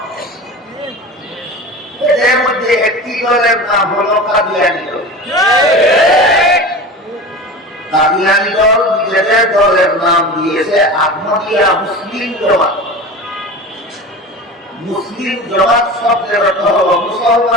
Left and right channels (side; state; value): both; normal; correlation 0.32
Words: এদের মধ্যে একটি দলের নাম হলো কাদিয়ানী দল। কাদিয়ানী দল নিজেদের দলের নাম দিয়েছে আহমদিয়া মুসলিম জমাত। মুসলিম জমাত শব্দের অর্থ হল